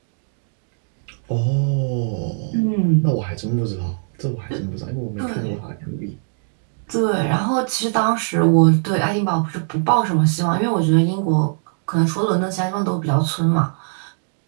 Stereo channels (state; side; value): silent; left; digital silence